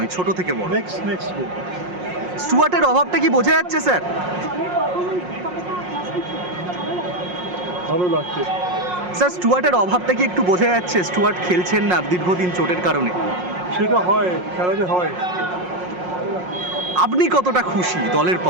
ছোট থেকে বড়। Next game. স্টুয়ার্টের অভাবটা কি বোঝা যাচ্ছে স্যার? ভালো লাগছে স্যার, স্টুয়ার্টের অভাবটা কি একটু বোঝা যাচ্ছে? স্টুয়ার্ট খেলছেন না দীর্ঘদিন চোটের কারণে। সেটা হয়, খেলাতে হয়। আপনি কতটা খুশি দলের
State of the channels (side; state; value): left; late; 5.5 ms